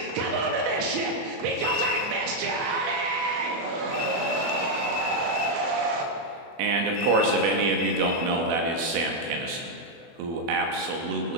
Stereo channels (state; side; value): late; left; 24 ms